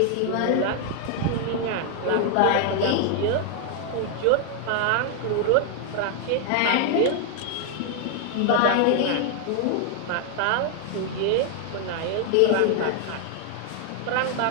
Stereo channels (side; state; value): both; different; correlation 0.00